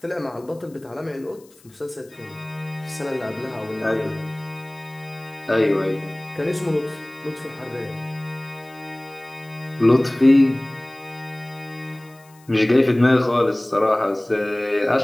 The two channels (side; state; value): left; noise; hiss, 28 dB below the sound